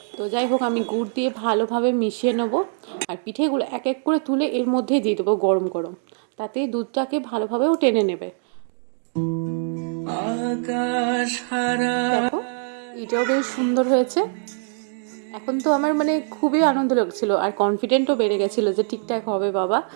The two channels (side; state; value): left; silent; digital silence